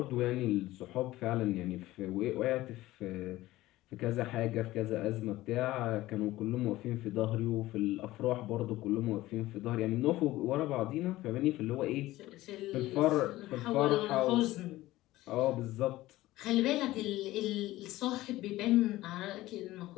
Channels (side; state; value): right; quieter; 16.9 dB